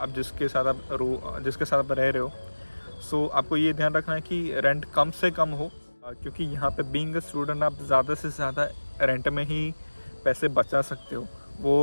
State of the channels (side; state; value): both; inverted; correlation -1.00